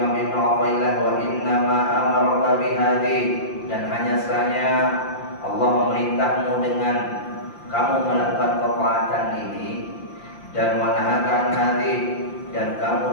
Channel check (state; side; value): late; right; 5.8 ms